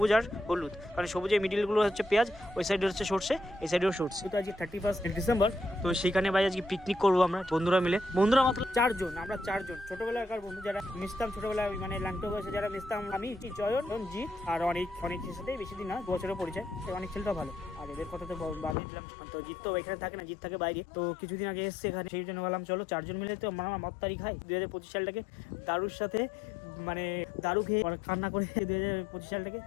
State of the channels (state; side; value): drops out; right; at 18.8 s